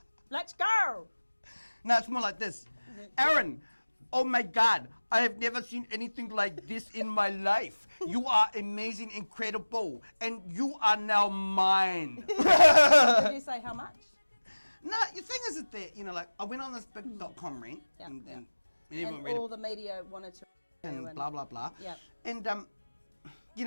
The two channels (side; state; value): both; inverted; correlation -1.00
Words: Let's go! No, it's more like this. Aaron! Oh my God, I have never seen anything like this in my life. You are amazing, incredible, and you are now mine. Did you say how much? No, the thing is that, you know, like, I went on this big .com rant, and everyone read it. All the media wanted to... And blah, blah, blah. And, you